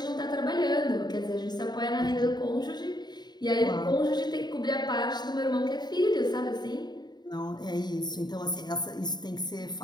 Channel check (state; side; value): late; right; 0.20 ms